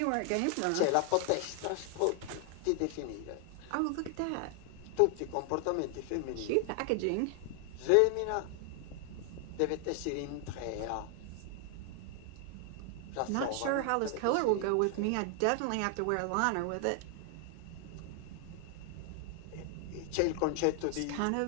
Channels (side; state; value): both; different; correlation 0.00